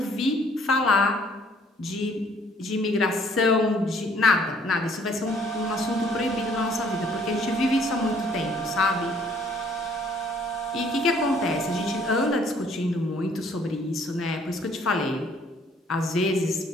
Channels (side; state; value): both; normal; correlation 0.61